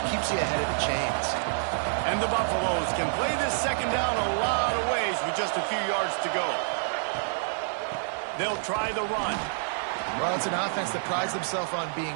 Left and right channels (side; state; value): left; silent; 58 dB below the other